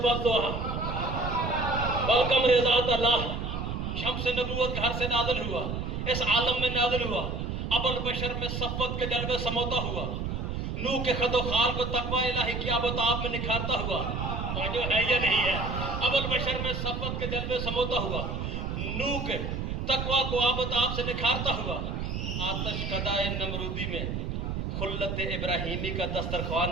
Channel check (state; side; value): noise; right; rumble, 3 dB below the sound